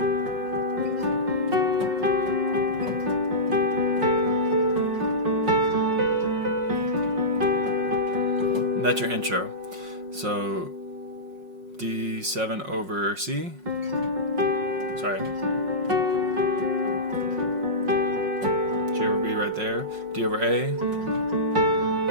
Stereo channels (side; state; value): left; late; 5.5 ms